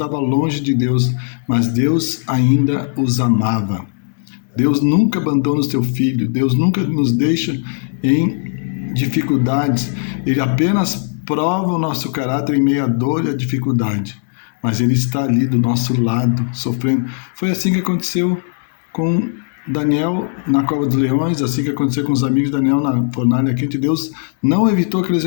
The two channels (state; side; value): silent; right; digital silence